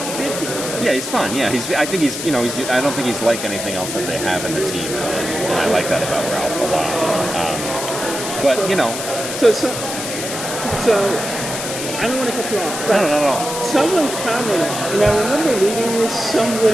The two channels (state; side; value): noise; left; hiss, 6 dB below the sound